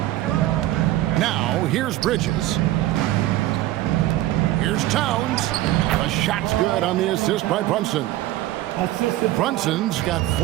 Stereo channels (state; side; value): quieter; left; 15.4 dB